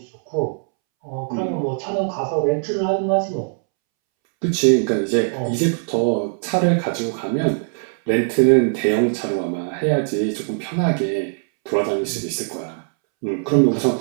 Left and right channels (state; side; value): silent; left; 65 dB below the other